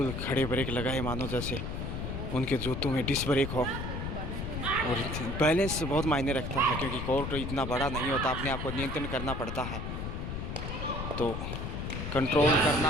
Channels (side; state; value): left; noise; rumble, 4 dB below the sound